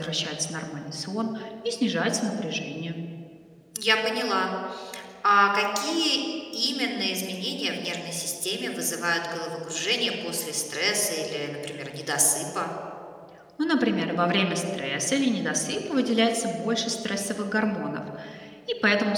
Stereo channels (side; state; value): both; identical; correlation 1.00